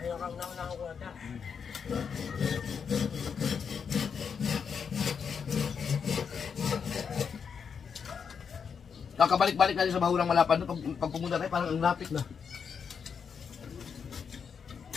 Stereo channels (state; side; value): quieter; right; 6.5 dB